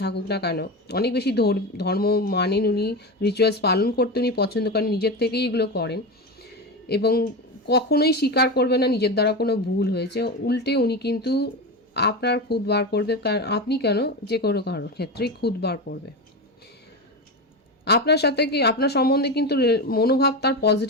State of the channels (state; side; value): normal; both; correlation 0.20